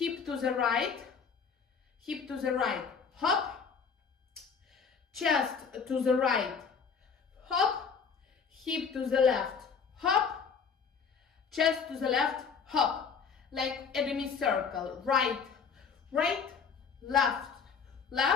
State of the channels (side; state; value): right; quieter; 6.0 dB